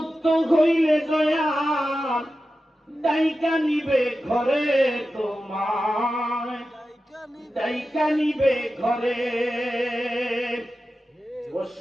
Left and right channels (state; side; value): normal; both; correlation 0.93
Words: হইলে দয়া ডাইকা নিবে ঘরে তোমায়, ডাইকা নিবে ঘরে